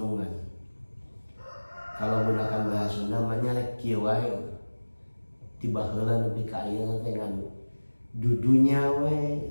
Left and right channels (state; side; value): inverted; both; correlation -1.00